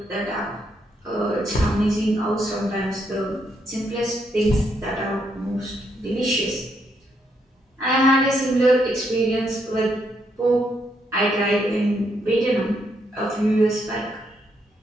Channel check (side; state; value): both; normal; correlation 0.76